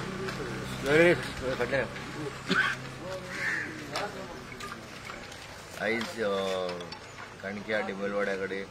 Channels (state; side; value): identical; both; correlation 1.00